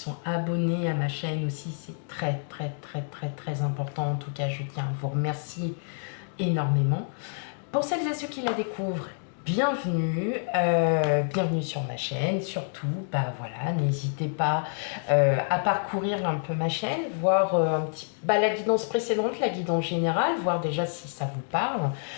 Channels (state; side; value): silent; right; digital silence